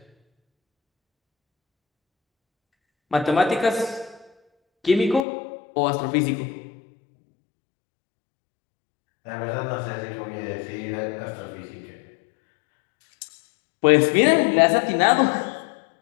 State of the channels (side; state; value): right; drops out; at 5.2 s